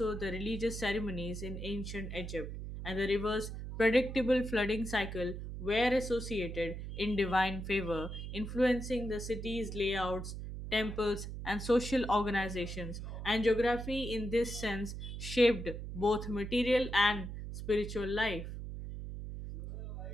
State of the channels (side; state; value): right; noise; hum, 7 dB below the sound